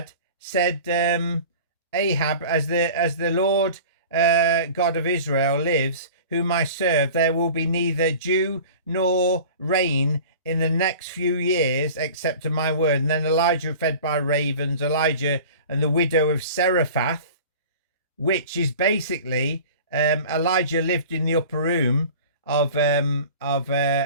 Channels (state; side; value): inverted; both; correlation -0.40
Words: said, Ahab, as the Lord God of Israel lives, whom I serve, there will be neither dew nor rain in the next few years, except to my word. And then Elijah fed by ravens, Elijah and the widow of Seraphath, which is basically Elijah lived in the upper room of